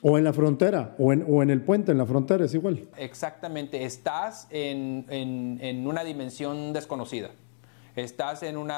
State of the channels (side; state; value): right; silent; digital silence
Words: O en la frontera, o en el puente, en la frontera, es igual. Exactamente, estás en una dimensión desconocida. Estás en